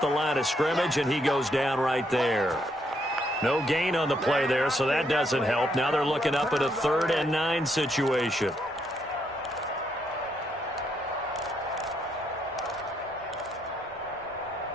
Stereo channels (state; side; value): normal; both; correlation 0.75